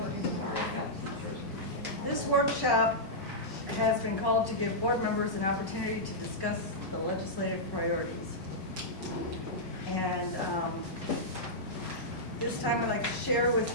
This workshop has been called to give board members an opportunity to discuss the legislative priorities. And this time I'd like to share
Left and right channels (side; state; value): both; normal; correlation -0.10